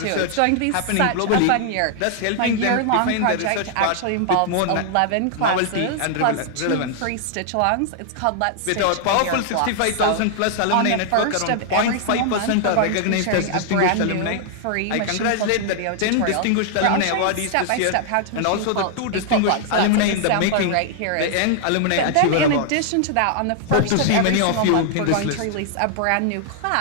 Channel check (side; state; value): both; different; correlation 0.00